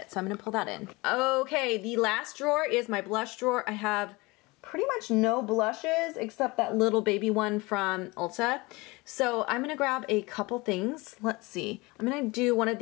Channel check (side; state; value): right; quieter; 23.9 dB